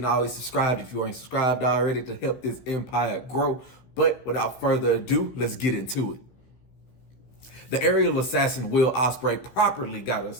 always subscribe if you ain't subscribed already to help this empire grow. But without further ado, let's get into it. The aerial assassin Will Ospreay properly got us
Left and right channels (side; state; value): right; late; 16 ms